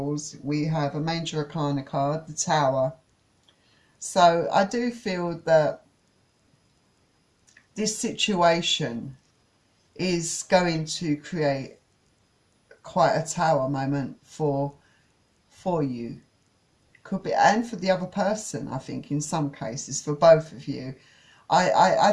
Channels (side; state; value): both; identical; correlation 1.00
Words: we have a Major Arcana card, the Tower. So I do feel that this situation is going to create quite a tower moment for you. Could be, and for the other person, I think, in some cases, for both of you. I